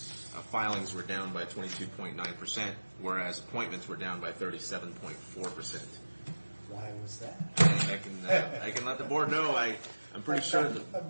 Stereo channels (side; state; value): both; inverted; correlation -1.00